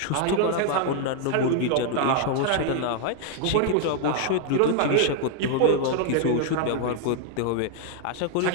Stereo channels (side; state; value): both; different; correlation 0.00